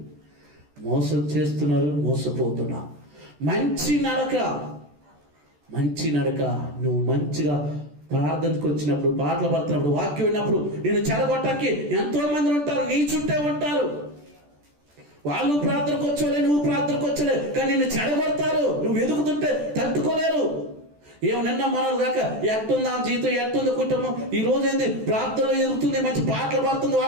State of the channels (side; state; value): left; late; 14 ms